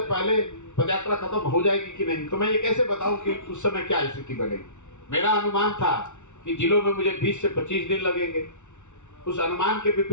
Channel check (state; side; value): late; right; 0.84 ms